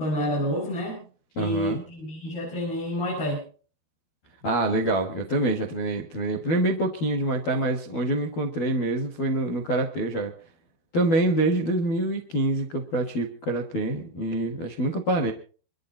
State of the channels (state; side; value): late; right; 12 ms